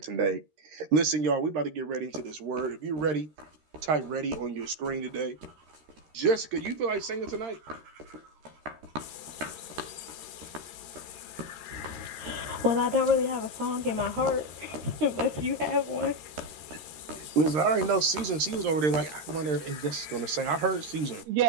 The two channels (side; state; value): left; late; 13 ms